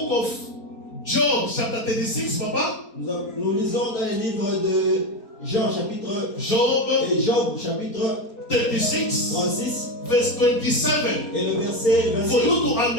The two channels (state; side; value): late; right; 4.3 ms